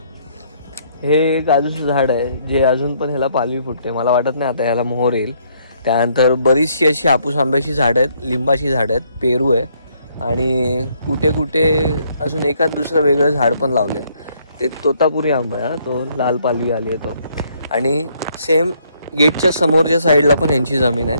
हे काजूचं झाड आहे जे अजून पण ह्याला पालवी फुटते. मला वाटत नाही आता ह्याला मोहर येईल. त्यानंतर बरीचशी अशी हापूस आंब्याची झाडं आहेत, लिंबाची झाडं आहेत, पेरू आहे. आणि कुठे कुठे अजून एखाद दुसरं वेगळं झाड पण लावले. ते तोतापुरी आंबा आहे, तो लाल पालवी आली आहे तो. आणि सेम गेटच्या समोरच्या साईडला पण यांची जमीन आहे,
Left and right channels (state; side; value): inverted; both; correlation -0.68